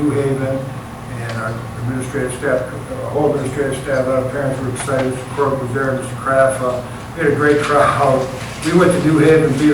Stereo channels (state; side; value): identical; both; correlation 1.00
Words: Haven, and our administrative staff, whole administrative staff, a lot of parents were excited. Mr. Corbett was there, Mr. Kraft. We had a great crowd. We went to New Haven, beat